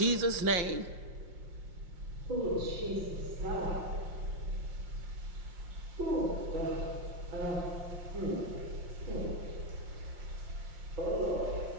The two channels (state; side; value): late; left; 5.6 ms